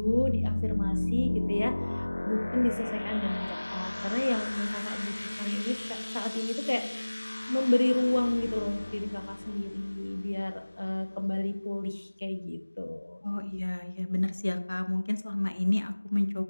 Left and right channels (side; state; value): both; inverted; correlation -1.00